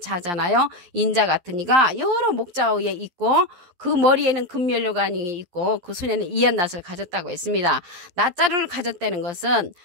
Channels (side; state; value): left; late; 11 ms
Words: 인자 같으니가 여러 목자 위에 있고 그 머리에는 금면류관이 있고 그 손에는 이한낫을 가졌다고 했습니다. 낫자루를 가졌다는 것은